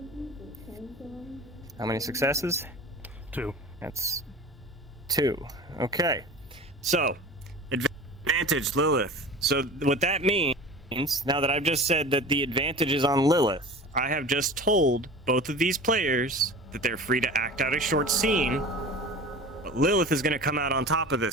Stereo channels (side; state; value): both; normal; correlation 0.37